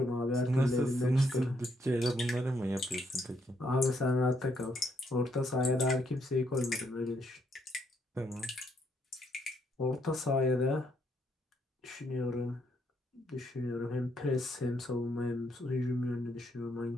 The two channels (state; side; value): normal; both; correlation 0.74